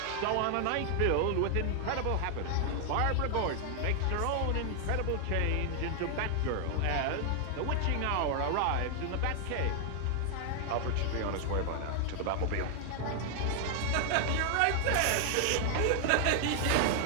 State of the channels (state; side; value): different; both; correlation 0.00